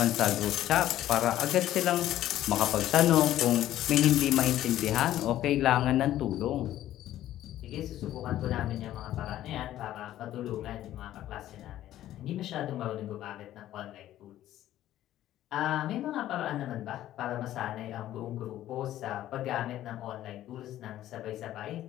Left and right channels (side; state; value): right; quieter; 13.2 dB